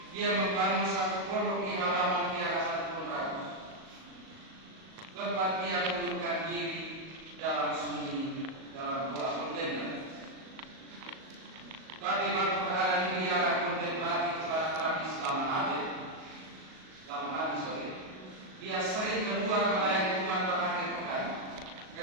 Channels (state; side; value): late; left; 37 ms